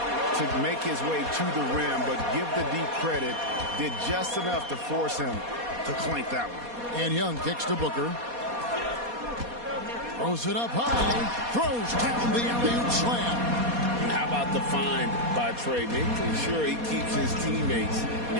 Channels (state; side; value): late; left; 4.2 ms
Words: to make his way to the rim, but give the deep credit. Did just enough to force him to clink that one. And Young kicks to Booker. Throws it up high. Throws down the alley-oop slam. And how about the find by Trey? Making sure he keeps his teammates